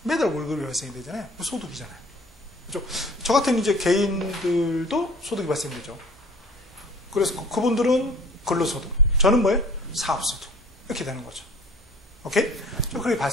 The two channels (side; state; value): both; normal; correlation 0.49